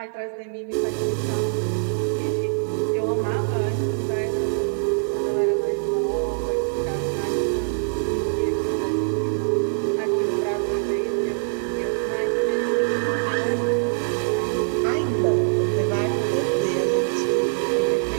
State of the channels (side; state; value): left; silent; 63 dB below the other